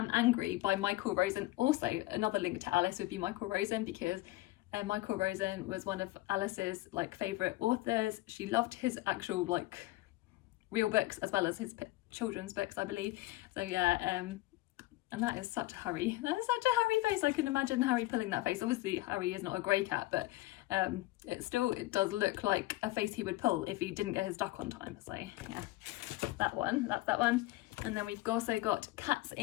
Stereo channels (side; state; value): right; quieter; 18.7 dB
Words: Angry by Michael Rosen. Also another link to Alice would be Michael Rosen, because Michael Rosen was one of Alice's like favourite authors. She loved his actual like real books as well as his children's books, I believe. So yeah, and that is such a Harry face. I can imagine Harry pulling that face. Obviously Harry is not a grey cat, but it does look like a face he would pull if he didn't get his duck on time. So yeah, that's that one. And then we've also got Cats